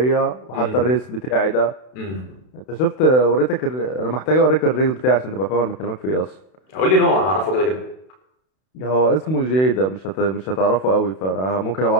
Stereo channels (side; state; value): right; late; 32 ms